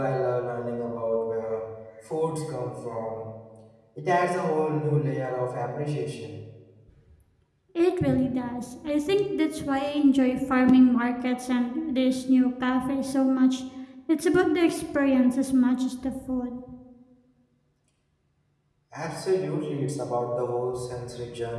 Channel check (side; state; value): both; identical; correlation 1.00